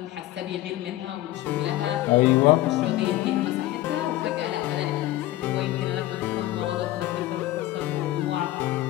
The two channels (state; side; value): quieter; right; 15.8 dB